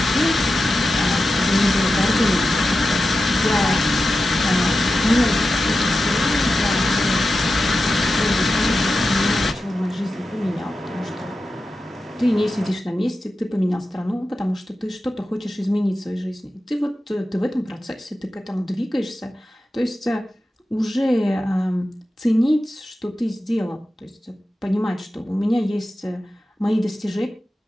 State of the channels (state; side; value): normal; both; correlation 0.92